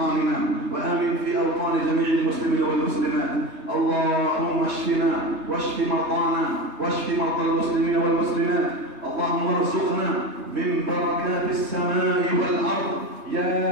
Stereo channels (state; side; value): late; left; 3.3 ms